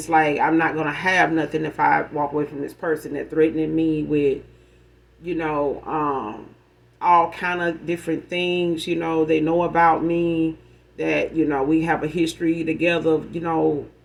like I'm not gonna have nothing if I walk away from this person that threatening me with, you know, um all kind of different things, they know about me, that, we have a history together,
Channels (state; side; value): identical; both; correlation 1.00